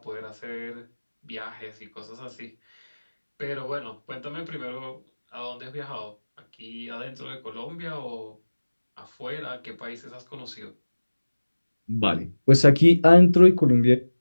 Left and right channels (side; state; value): both; inverted; correlation -1.00